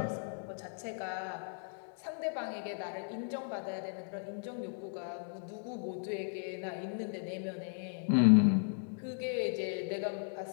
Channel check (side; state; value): right; silent; 54 dB below the other